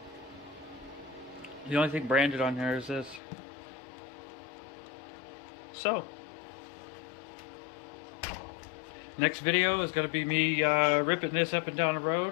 The only thing branded on here is this. So, next video is going to be me ripping this up and down the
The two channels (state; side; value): drops out; right; at 3.2 s